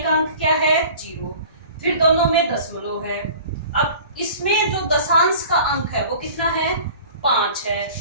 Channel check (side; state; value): both; inverted; correlation -0.44